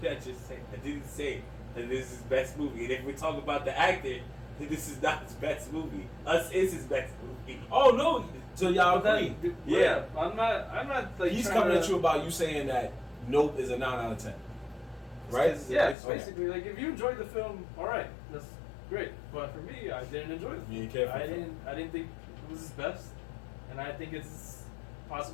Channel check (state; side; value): drops out; right; at 16.0 s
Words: did I just say? I didn't say that this is his best movie. And if we talk about the actor, then this is not his best movie. Us is his best movie. Oh no! So y'all agree? Yeah. I'm not like. He's coming at you about you saying that Nope is a 9 out of 10. Right? Yeah, basically. Like, if you enjoyed the film, all right, that's great. But for me, I didn't enjoy the film. I didn't think it was his best, and I think it's